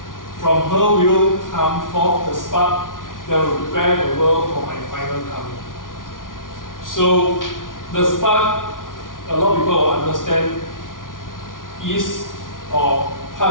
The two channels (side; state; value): right; late; 0.88 ms